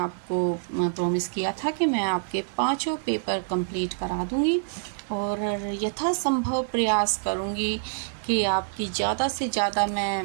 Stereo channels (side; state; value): left; silent; 61 dB below the other